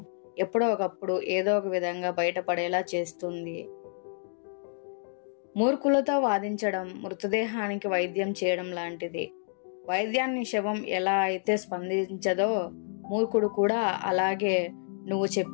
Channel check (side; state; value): right; silent; digital silence